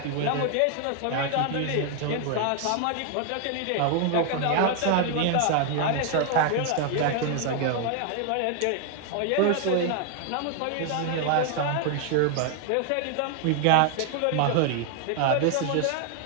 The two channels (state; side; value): different; both; correlation 0.00